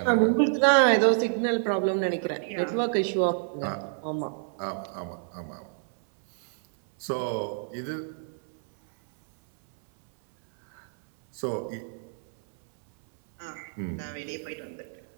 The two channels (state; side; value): silent; left; 60 dB below the other